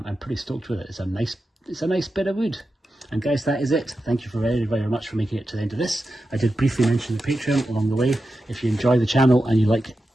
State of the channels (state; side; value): normal; both; correlation 0.90